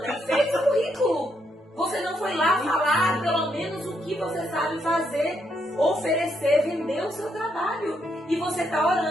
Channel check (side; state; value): both; normal; correlation 0.77